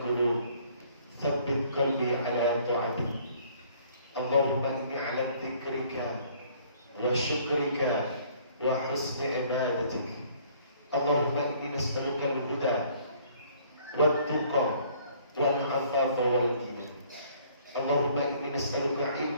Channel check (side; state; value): both; inverted; correlation -0.59